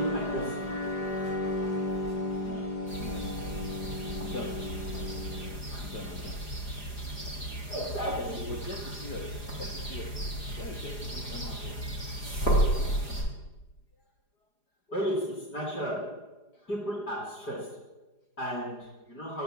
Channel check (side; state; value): right; late; 4.9 ms